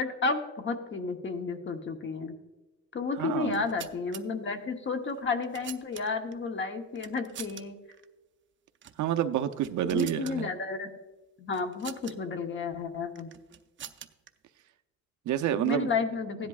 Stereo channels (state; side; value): normal; both; correlation 0.16